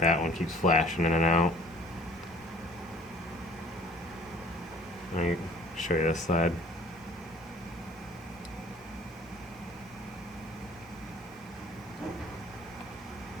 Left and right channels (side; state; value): both; normal; correlation 0.52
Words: one keeps flashing in and out. Let me show you this side.